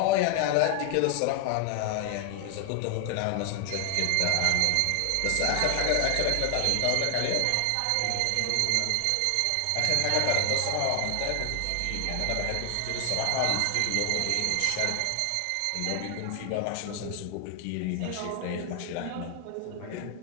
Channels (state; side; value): different; both; correlation 0.00